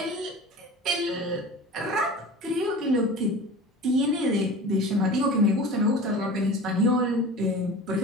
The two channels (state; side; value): normal; both; correlation 0.37